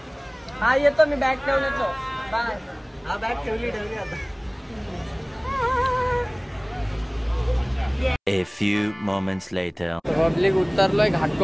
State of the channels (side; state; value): both; identical; correlation 1.00